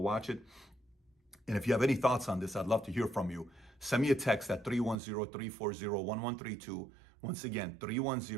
it. And if you have any thoughts on this, I'd love to hear from you. Send me a text at 310-340-1132. Once again,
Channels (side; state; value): left; drops out; at 5.0 s